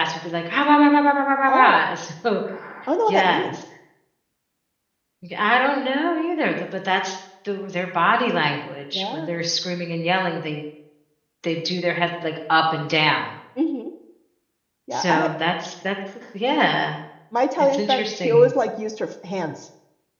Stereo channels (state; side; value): identical; both; correlation 1.00